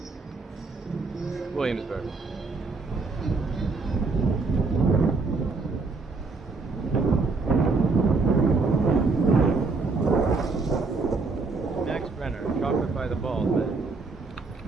Williamsburg. Max Brenner, chocolate by the bald man.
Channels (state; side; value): quieter; left; 4.0 dB